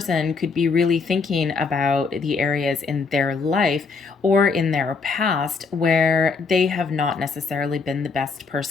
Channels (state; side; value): quieter; right; 4.7 dB